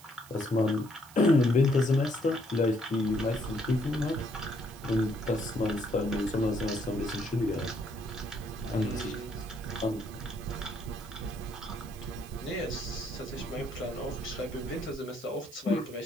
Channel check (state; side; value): noise; right; hiss, 20 dB below the sound